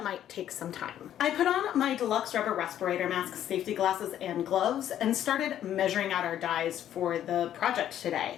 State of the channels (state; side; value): quieter; right; 11.0 dB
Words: might take some time. I put on my deluxe rubber respirator mask, safety glasses, and gloves, and started measuring out our dyes for the project